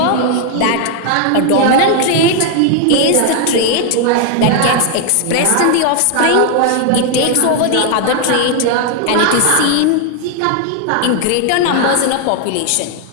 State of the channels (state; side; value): different; both; correlation 0.00